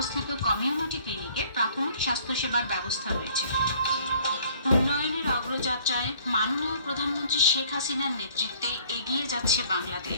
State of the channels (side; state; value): both; inverted; correlation -0.56